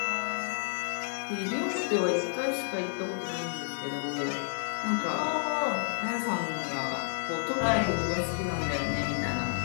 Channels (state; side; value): silent; right; digital silence